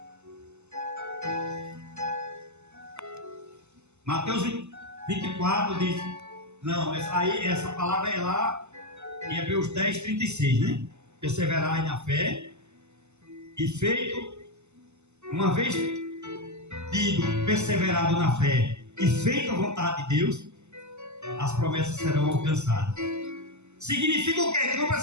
Mateus 24 diz, não, essa palavra é lá em Hebreus 10, 36, né? Perseverai na fé e feito, uma vez tido perseverado na fé e feito a vontade de Deus, as promessas serão alcançadas. Significa o quê? Que não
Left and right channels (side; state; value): left; late; 0.82 ms